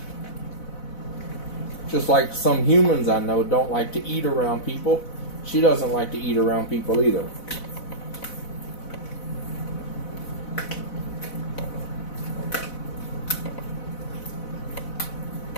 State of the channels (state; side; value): late; right; 4.0 ms